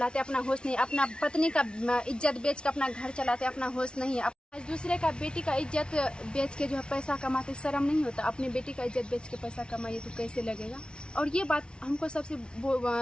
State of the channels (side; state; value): right; late; 0.056 ms